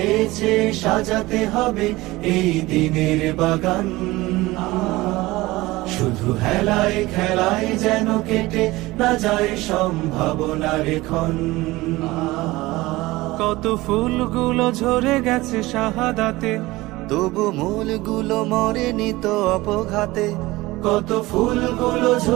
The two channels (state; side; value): quieter; left; 19.7 dB